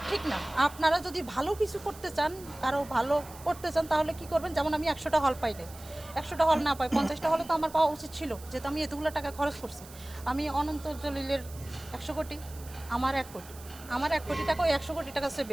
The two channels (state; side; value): noise; right; hiss, 19 dB below the sound